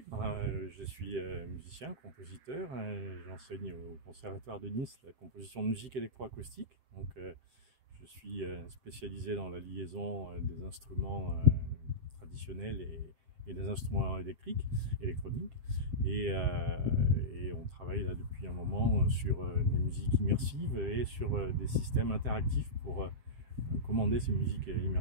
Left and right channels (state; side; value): late; left; 7.7 ms